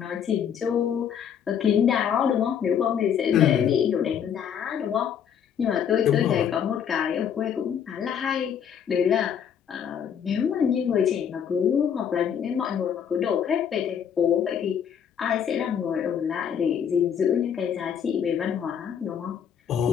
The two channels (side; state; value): right; quieter; 8.3 dB